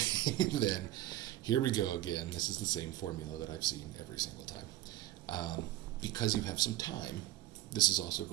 than, here we go again, this is the same formula that I've seen every single time. Because you have some time, this is also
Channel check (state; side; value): quieter; left; 14.8 dB